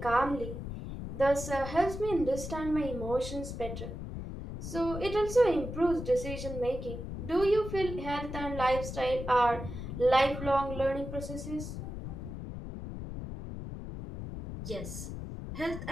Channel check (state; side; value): noise; left; rumble, 7 dB below the sound